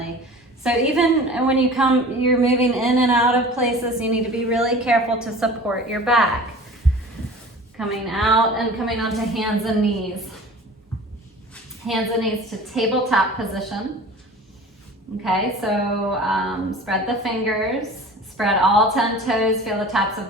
So even when you're moving in and out of places, you need to be really careful to support your back. Coming out and coming onto hands and knees. Hands and knees to tabletop position. Okay, so spread the fingers, spread all 10 toes, feel the tops of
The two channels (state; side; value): normal; both; correlation 0.41